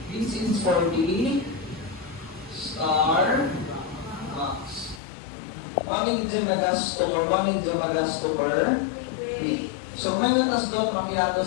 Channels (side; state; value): right; drops out; at 5.0 s